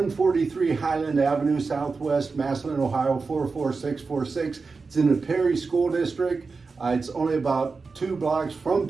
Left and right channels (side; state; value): left; quieter; 4.4 dB